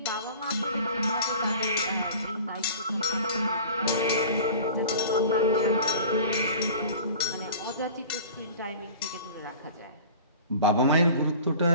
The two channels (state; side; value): inverted; both; correlation -0.41